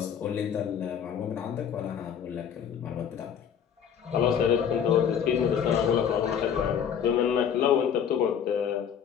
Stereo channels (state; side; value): quieter; right; 8.1 dB